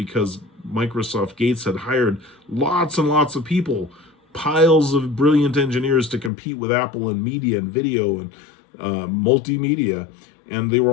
Microsoft Gates had hired lots and lots of people, piles of brilliant engineers to compete with Apple in media and video and multimedia. And they were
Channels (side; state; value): right; drops out; at 6.3 s